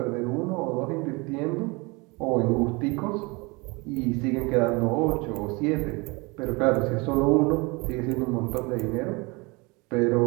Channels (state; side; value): quieter; left; 26.8 dB